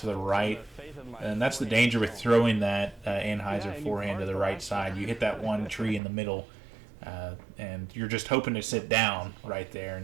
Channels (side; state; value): left; drops out; at 6.0 s